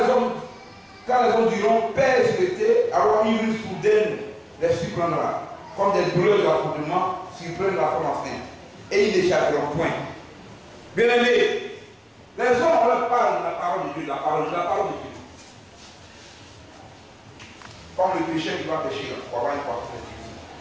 les hommes diront Père et souhaité, alors une ruse soudaine les surprendra, comme des douleurs de l'affrontement surprennent la femme enceinte, et ils n'échapperont point. Bien aimés, les hommes on leur parle de la parole de Dieu, la parole de Dieu. Comme le pécheur qui va pécher, pour avoir une croissance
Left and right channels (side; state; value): both; identical; correlation 1.00